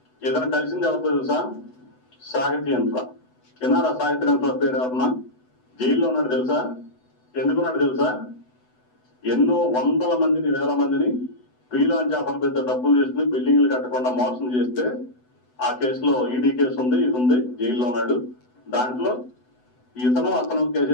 ఏదైనా కలిసింది ఎవరితో తెలుసా? సాహిత్య యంత్ర. విన్నారా సాహిత్య యంత్ర పేరు ఎవరన్నా? జైల్లో ఉన్నాడు తెలుసా? ఎందుకున్నాడు తెలుసా? ఎన్నో వందల మందిని వేల మందిని ప్రీలాంచ్ ఆఫర్ పెద్ద డబ్బులు చేసుకుని బిల్డింగ్లు కట్టకుండా మోసం చేస్తే ఆ కేసులో ఈడీ కేసు ఉంది, ఇది ఉంది, జైల్లో ఉన్నాడు. దాంట్లో అతను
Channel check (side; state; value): right; late; 8.0 ms